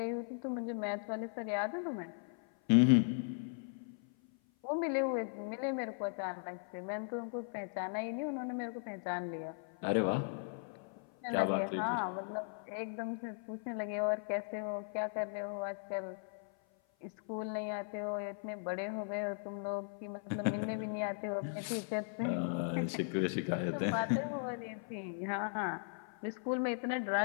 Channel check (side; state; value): right; silent; 52 dB below the other